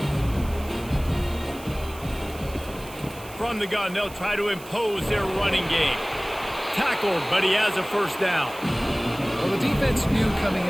From the gun, they'll try to impose their running game. Tackled, but he has a 1st down. Well, the defense knew coming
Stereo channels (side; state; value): right; noise; hiss, 18 dB below the sound